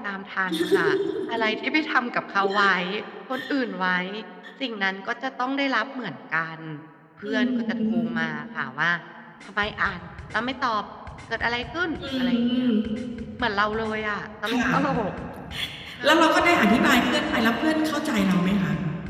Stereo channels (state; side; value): identical; both; correlation 1.00